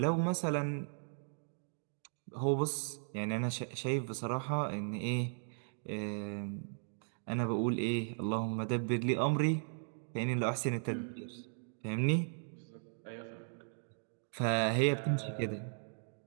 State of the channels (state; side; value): silent; left; digital silence